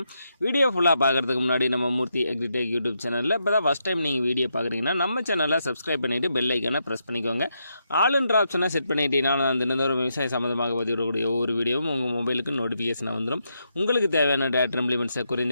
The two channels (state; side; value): inverted; both; correlation -0.82